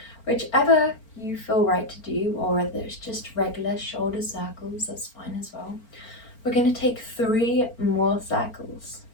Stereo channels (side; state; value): right; late; 4.4 ms